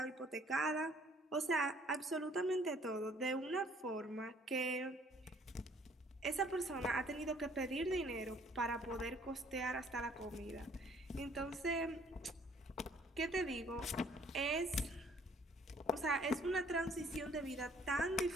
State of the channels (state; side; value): normal; both; correlation 0.59